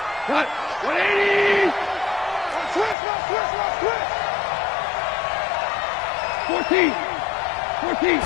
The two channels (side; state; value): right; drops out; at 3.0 s